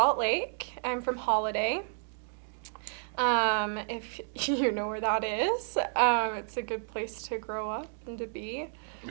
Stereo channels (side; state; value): left; silent; digital silence